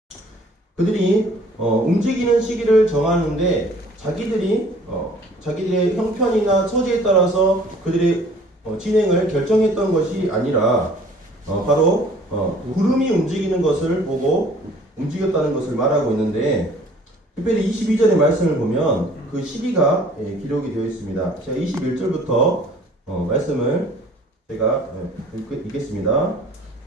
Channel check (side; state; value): both; normal; correlation 0.53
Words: 그들이 움직이는 시기를 정하는데 자기들의 형편이나 처지에 따라서 그들의 진행을 결정했던 것이 아니라 바로 구름이 움직이는 것을 보고 움직였다는 것을 말하고 있는데, 특별히 22절의 말씀을 보면 그 시기가 기록이 되어 있습니다. 제가 21절부터 말씀을 제가 읽겠습니다.